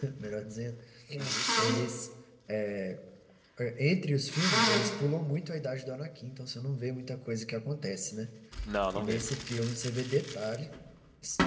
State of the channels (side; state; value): both; identical; correlation 1.00